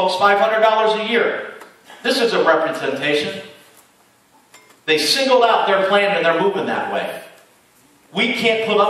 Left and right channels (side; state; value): both; identical; correlation 1.00